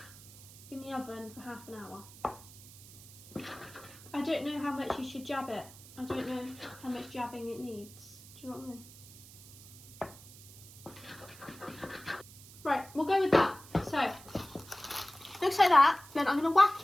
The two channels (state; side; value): noise; right; hiss, 19 dB below the sound